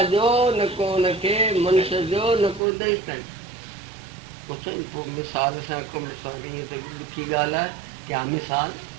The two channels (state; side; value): drops out; left; at 2.6 s